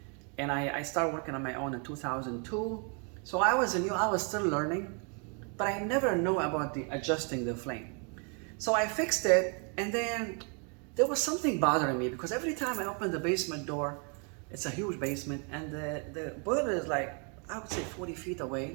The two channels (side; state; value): left; quieter; 37.8 dB